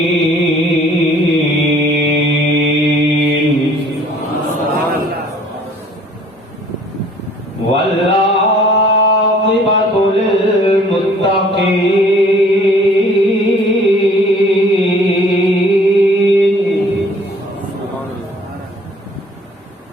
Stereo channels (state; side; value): normal; both; correlation 0.55